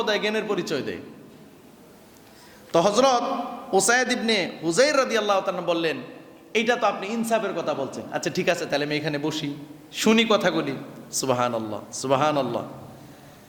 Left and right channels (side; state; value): both; identical; correlation 1.00